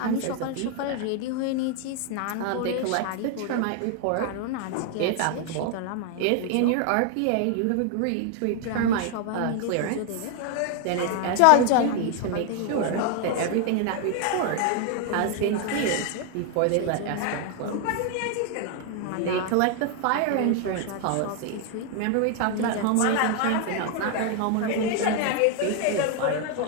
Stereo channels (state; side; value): different; both; correlation 0.00